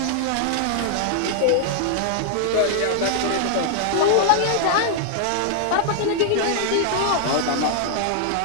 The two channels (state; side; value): different; both; correlation 0.00